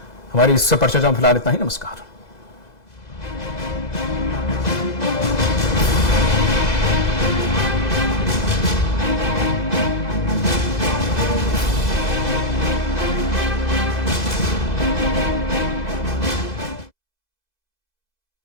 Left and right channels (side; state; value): right; late; 2.0 ms